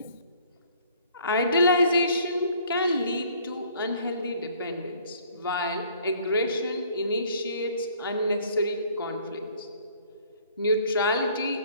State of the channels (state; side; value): inverted; both; correlation -0.57